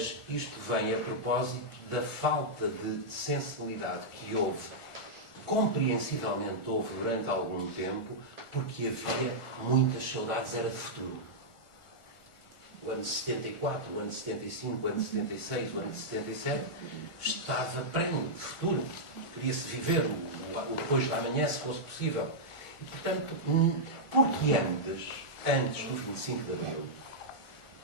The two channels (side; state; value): right; late; 1.4 ms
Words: isto vem a propósito da falta de sensibilidade que houve, compreensivelmente houve durante algum tempo, porque havia muitas saudades, era de futuro. O ano de 74, o ano de 75, o ano de 76, o ano de 77, estava prenho de futuro. Queria-se viver o depois da manhã, se fosse possível. E, portanto, porque antes do 25 de Abril,